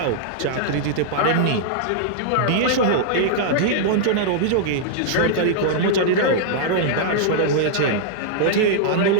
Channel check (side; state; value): both; different; correlation -0.01